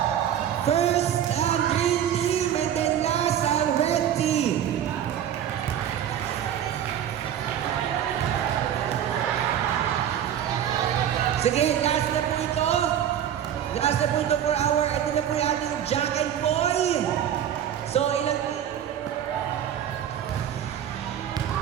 First, ang green team, and then last, ang red team. Sige, last na po ito. Last na po ito for our, ito na po yung ating Jack and Boy. So, ilang...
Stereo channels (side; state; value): left; quieter; 10.0 dB